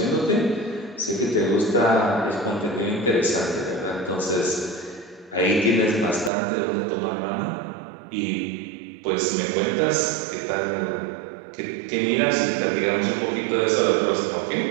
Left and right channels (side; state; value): left; drops out; at 6.3 s